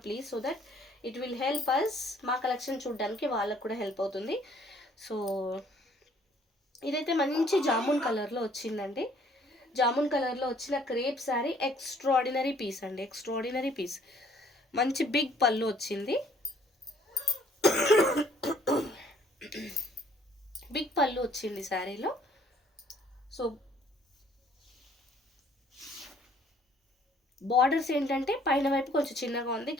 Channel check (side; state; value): both; normal; correlation 0.61